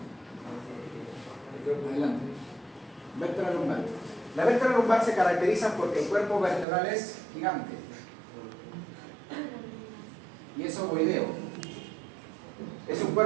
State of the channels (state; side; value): drops out; left; at 6.7 s